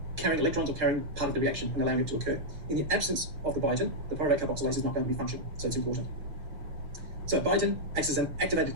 carrying electrons or carrying part of the reaction and allowing it to occur. In the absence of the biotin, the pyruvate carboxylase is not going to be functional, so it's important. So biotin acts as an activated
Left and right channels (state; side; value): late; left; 6.2 ms